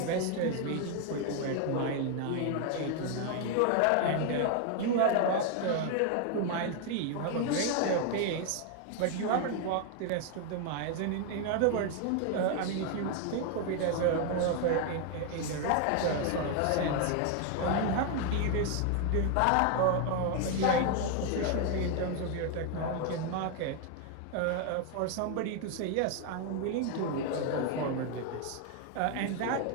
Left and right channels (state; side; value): different; both; correlation 0.00